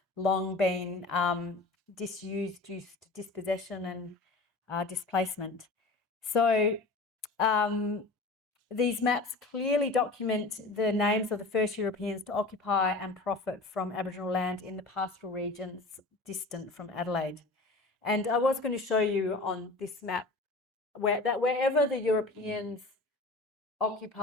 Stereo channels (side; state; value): right; quieter; 3.2 dB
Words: long been disused due to dispossession and displacement. So these maps clearly document the names of the first Europeans to occupy and profit from Aboriginal land in the pastoral regions distant from Adelaide. And I was going to show you on this map that wherever the Europeans